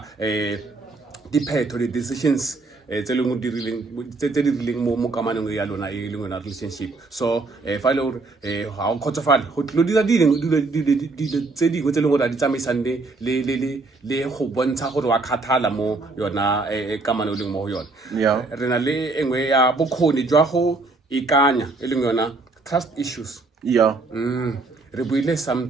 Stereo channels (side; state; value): left; quieter; 3.5 dB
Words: diphetho di-decisions tse leng di rileng mo kamanong ya lona e leng yona relationship. So fa le hore ha o khotsofala go tlo dira dilo tse dingwe tse leng gore a di tsamaisang le go bontsha gore wa kgathala mo yona kamano leng mo yona. Yeah. Re na le engwe ya bokgoni jwa go ikanya e leng yona trust issues. Yeah. Re buile